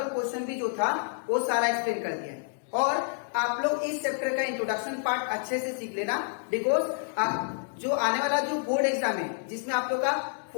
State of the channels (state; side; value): silent; right; 56 dB below the other